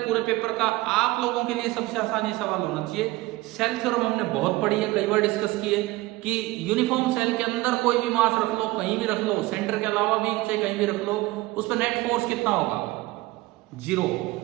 पूरे पेपर का आप लोगों के लिए सबसे आसान ये सवाल होना चाहिए। सेल थ्योरम हमने बहुत पढ़ी है, कई बार डिस्कस किए कि यूनिफॉर्म सेल के अंदर कोई भी मास रख लो, कहीं भी रख लो, सेंटर के अलावा भी चाहे कहीं भी रख लो, उस पर नेट फोर्स कितना होगा? 0।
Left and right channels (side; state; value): left; quieter; 19.9 dB